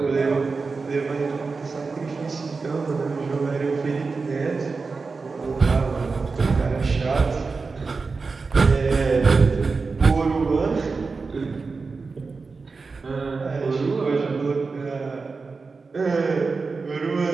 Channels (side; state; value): left; quieter; 4.4 dB